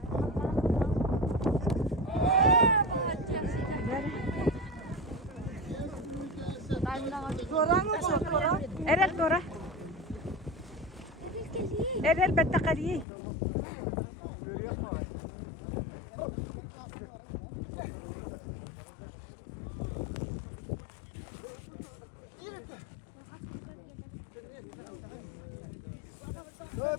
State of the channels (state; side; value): drops out; right; at 13.1 s